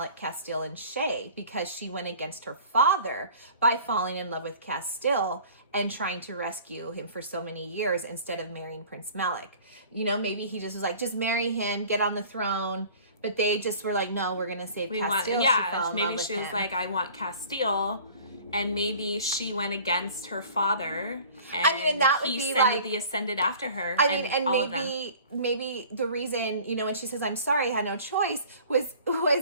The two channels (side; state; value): both; inverted; correlation -0.47